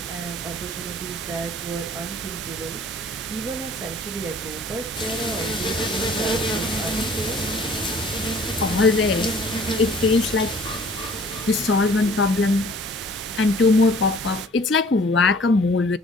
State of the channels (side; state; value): both; normal; correlation 0.52